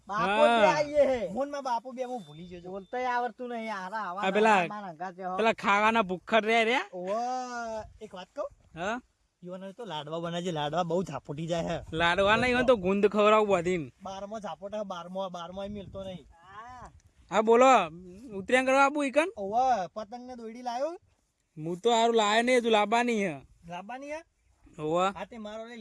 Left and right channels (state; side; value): identical; both; correlation 1.00